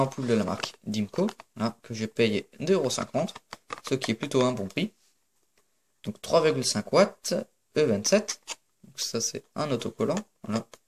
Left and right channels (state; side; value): identical; both; correlation 1.00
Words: de la marque Dimco, là, que j'ai payé 2,50 €, ce qui est plutôt un bon prix. Donc 3,5 watts, E27. Donc ça c'est un autocollant. Voilà.